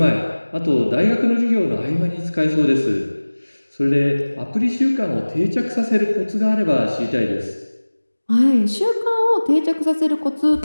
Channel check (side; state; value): both; inverted; correlation -1.00